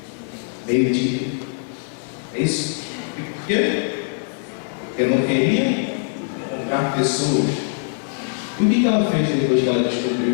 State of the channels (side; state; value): right; silent; digital silence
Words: Meio-dia. É isso? E por quê? Porque não queria encontrar pessoas. E o que ela fez depois que ela